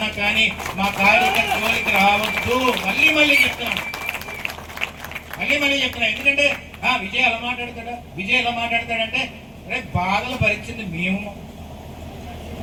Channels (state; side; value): identical; both; correlation 1.00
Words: కానీ మా కార్యకర్త జోలికి రావద్దు. మళ్ళీ చెప్తున్నాను, మళ్ళీ చెప్తున్నాను. ఎందుకంటే విజయ్ ఎలా మాట్లాడతాడంటే రేపు బాధలు భరించింది మేము.